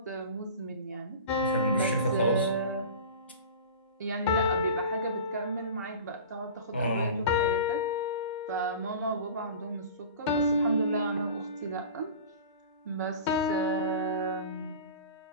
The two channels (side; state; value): both; inverted; correlation -0.37